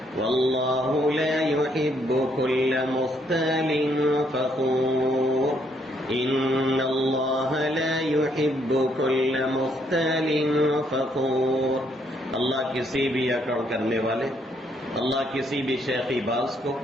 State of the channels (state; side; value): normal; both; correlation 0.71